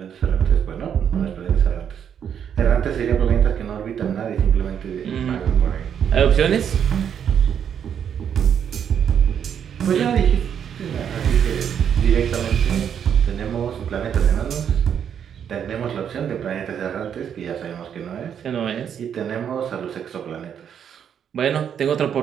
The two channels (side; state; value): left; quieter; 8.4 dB